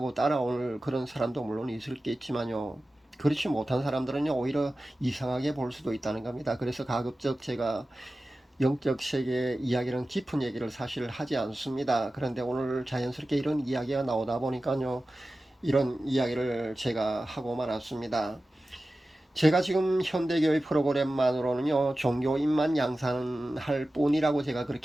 따라올 그런 사람도 물론 있을겠지만요, 그렇지 못한 사람들은요, 오히려 이상하게 볼 수도 있다는 겁니다. 그래서 가급적 제가 영적 세계 이야기는 깊은 얘기를 사실 하지 않습니다. 그런데 오늘 자연스럽게 이런 이야기가 나오다 보니까요, 이런 이야기를 제가 하고 말았습니다. 제가 지금 현대교회 프로그램만으로는요, 종교인만 양산할 뿐이라고 제가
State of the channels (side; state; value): both; normal; correlation 0.95